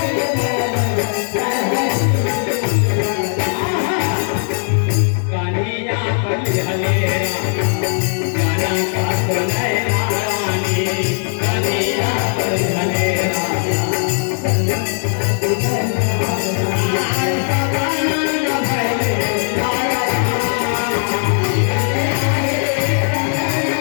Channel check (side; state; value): right; silent; digital silence